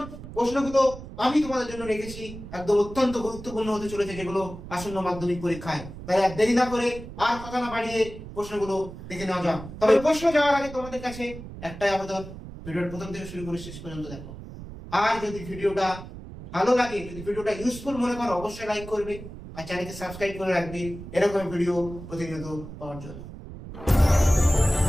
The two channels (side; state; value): right; noise; rumble, 13 dB below the sound